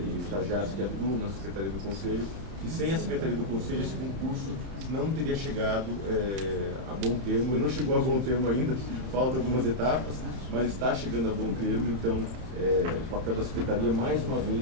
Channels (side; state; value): left; late; 31 ms